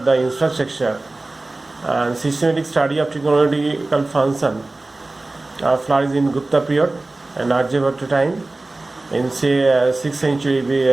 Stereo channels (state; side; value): quieter; left; 3.0 dB